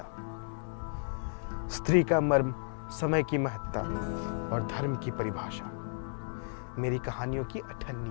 स्त्री का मर्म, समय की महत्ता और धर्म की परिभाषा मेरी कहानियों की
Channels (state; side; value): silent; right; digital silence